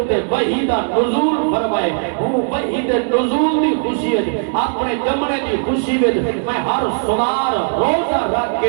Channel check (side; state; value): left; silent; 68 dB below the other